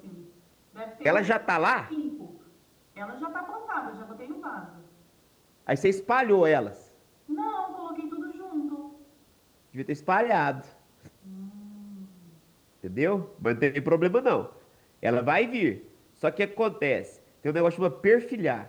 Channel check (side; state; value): both; identical; correlation 1.00